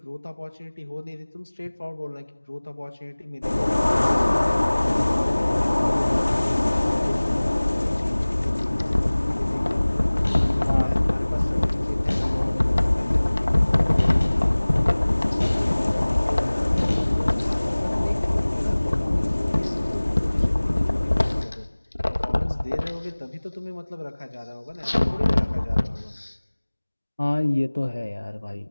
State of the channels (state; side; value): inverted; both; correlation -1.00